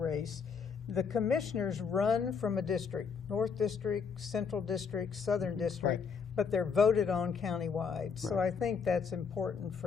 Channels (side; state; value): right; quieter; 6.0 dB